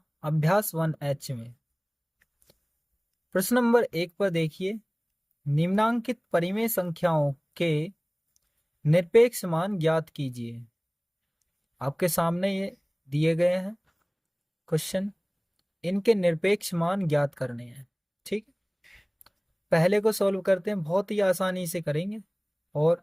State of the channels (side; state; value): both; identical; correlation 1.00